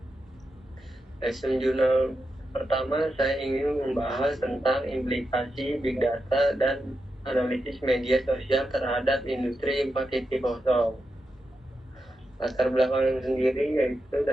Lesson jurnal pertama, saya ingin membahas tentang implikasi Big Data dan analisis media sosial terhadap industri 4.0. Latar belakang sendiri yaitu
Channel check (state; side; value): normal; both; correlation 0.87